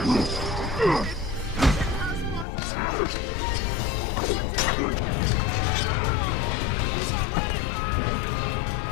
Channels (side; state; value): right; drops out; at 2.5 s